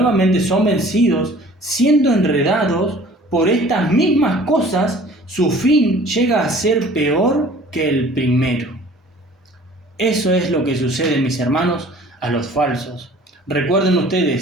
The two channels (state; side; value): normal; both; correlation 0.49